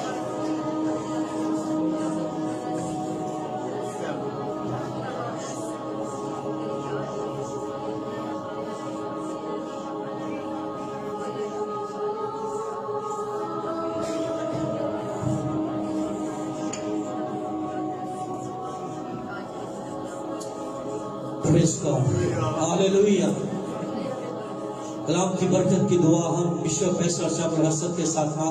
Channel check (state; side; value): identical; both; correlation 1.00